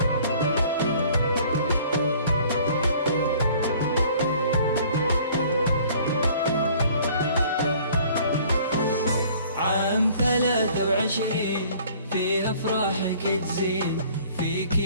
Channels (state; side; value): inverted; both; correlation -0.53